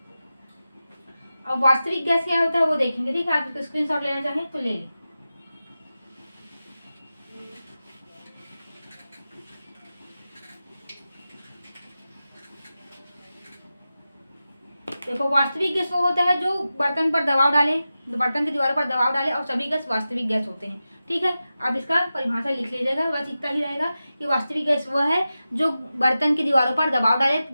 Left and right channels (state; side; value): inverted; both; correlation -0.94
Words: अब वास्तविक गैस क्या होता है वो देखेंगे, ठीक है। आप इसको स्क्रीनशॉट लेना चाहें तो ले लें। देखो, वास्तविक गैस वो होता है जो बर्तन पर दबाव डाले, बर्तन की दीवारों पर दबाव डाले, और सभी गैस वास्तविक गैस होते हैं, ठीक है। आप इसका परिभाषा लिख लीजिएगा। बस इतना ही रहेगा कि वास्तविक गैस वह है जो बर्तन की दीवारों पर दबाव डाले,